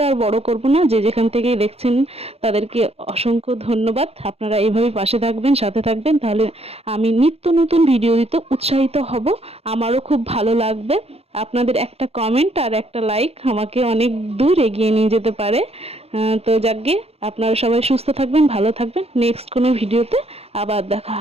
আর বড় করব না, যে যেখান থেকেই দেখছেন তাদেরকে অসংখ্য ধন্যবাদ। আপনারা এইভাবে পাশে থাকবেন, সাথে থাকবেন, তাহলে আমি নিত্য নতুন ভিডিও দিতে উৎসাহিত হব, আমারও খুব ভালো লাগবে। আপনাদের একটা কমেন্ট আর একটা লাইক আমাকে অনেক দূর এগিয়ে নিয়ে যেতে পারে। তো যাকগে, আপনারা সবাই সুস্থ থাকবেন, ভালো থাকবেন। নেক্সট কোনো ভিডিওতে আবার দেখা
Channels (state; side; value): late; left; 0.29 ms